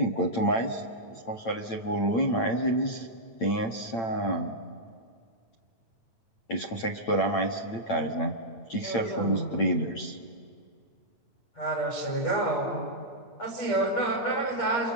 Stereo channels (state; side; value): late; right; 8.9 ms